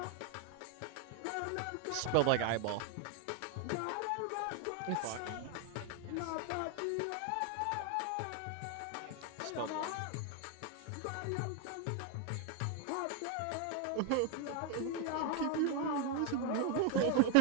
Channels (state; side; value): different; both; correlation 0.01